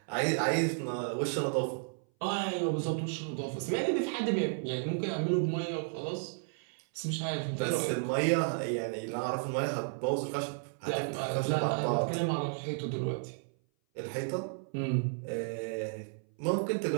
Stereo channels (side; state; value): left; silent; 56 dB below the other